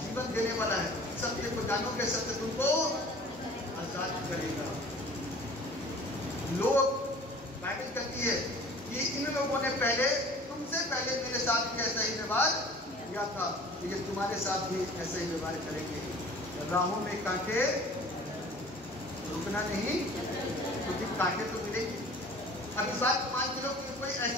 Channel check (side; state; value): both; normal; correlation 0.46